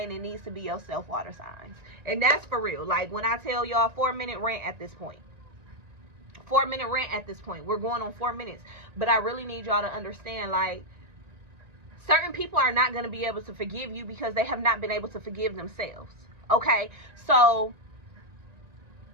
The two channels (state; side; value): late; left; 1.9 ms